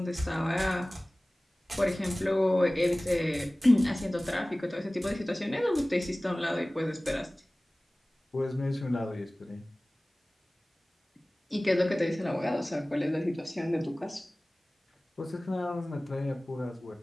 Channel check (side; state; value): both; normal; correlation 0.98